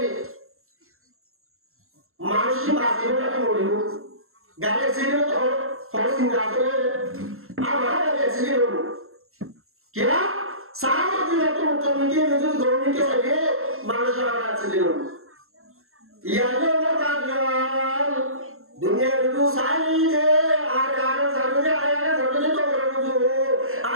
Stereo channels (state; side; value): late; left; 0.62 ms